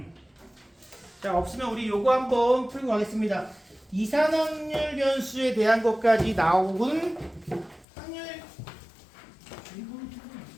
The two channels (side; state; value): right; drops out; at 7.9 s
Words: 자, 없으면 우리 요거 한번 풀고 가겠습니다. 이산확률 변수에 대한 것까지 나온 확률